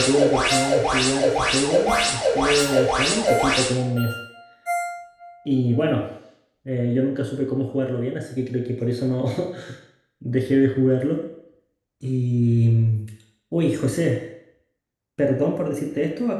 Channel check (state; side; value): identical; both; correlation 1.00